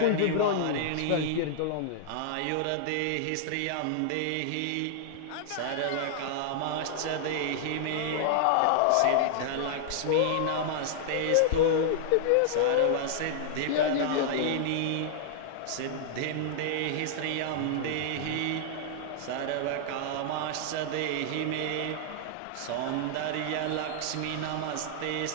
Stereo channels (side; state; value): both; different; correlation -0.01